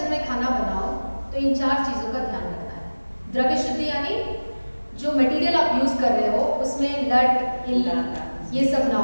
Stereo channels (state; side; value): inverted; both; correlation -1.00